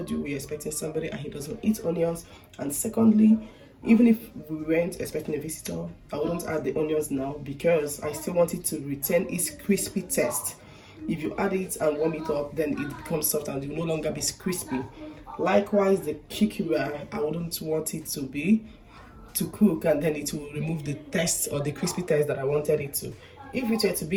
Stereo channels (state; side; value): identical; both; correlation 1.00